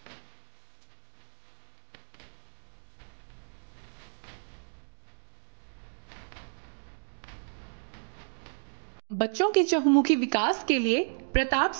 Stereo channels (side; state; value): left; silent; digital silence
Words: बच्चों के चहुमुखी विकास के लिए प्रताप